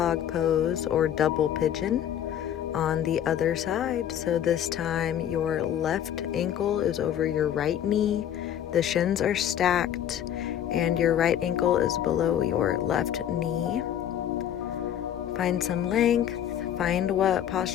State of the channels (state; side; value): quieter; right; 10.3 dB